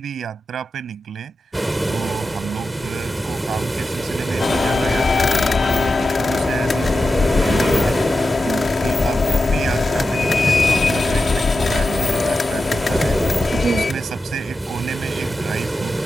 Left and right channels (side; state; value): both; normal; correlation 0.91